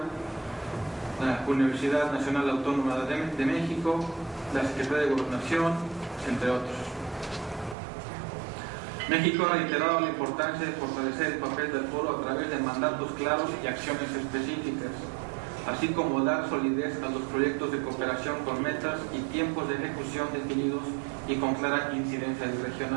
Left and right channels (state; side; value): drops out; left; at 7.8 s